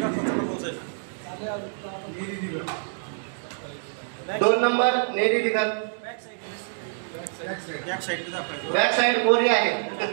2 number Neri Digat. Back side गोरी आहे.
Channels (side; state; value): left; silent; digital silence